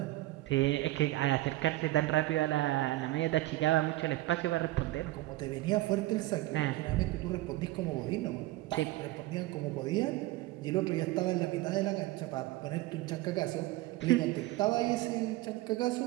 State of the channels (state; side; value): quieter; left; 17.8 dB